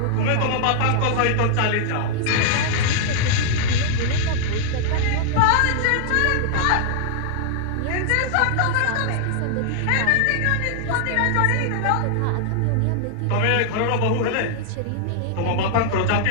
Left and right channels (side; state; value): both; different; correlation -0.01